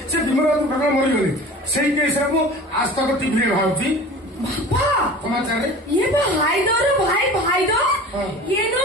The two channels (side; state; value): both; normal; correlation 0.40